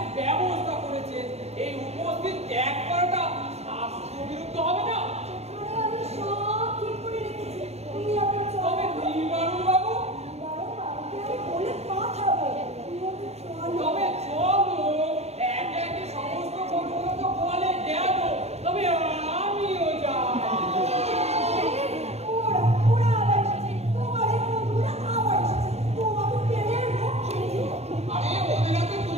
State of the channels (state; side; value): late; left; 0.31 ms